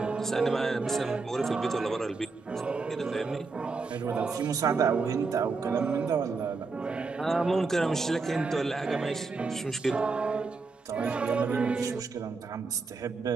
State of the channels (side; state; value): left; quieter; 4.2 dB